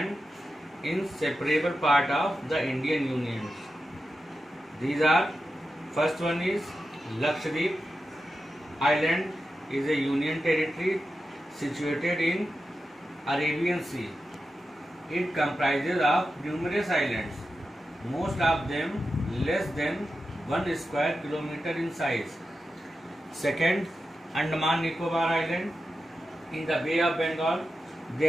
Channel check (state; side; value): normal; both; correlation 0.91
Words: inseparable part of the Indian Union. These are, first one is Lakshadweep Island is a union territory situated in Arabian Sea. It comprises of numerous islands, most of them less than 1 square kilometer in size. Second, Andaman Nicobar Island in the Bay of Bengal.